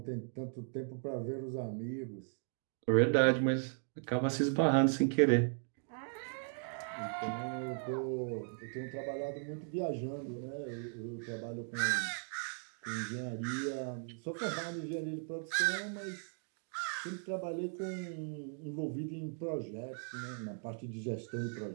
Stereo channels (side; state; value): left; silent; 53 dB below the other